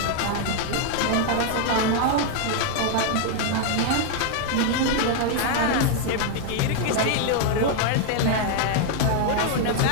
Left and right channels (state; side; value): different; both; correlation 0.00